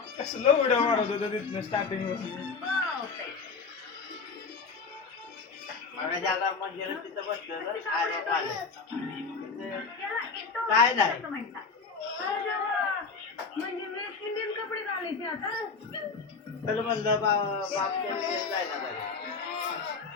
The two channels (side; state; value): right; quieter; 4.8 dB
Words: कसलं व्हिडिओ मारत होतं तिथनं स्टार्टिंग मला जागा मंदिर तिथं बसलं काय नाही म्हणजे वेस्ट इंडियन कपडे घालायचे आता तर म्हणलं बाप जायला